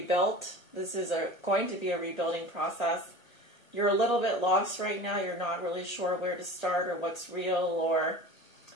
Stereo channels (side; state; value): right; late; 1.2 ms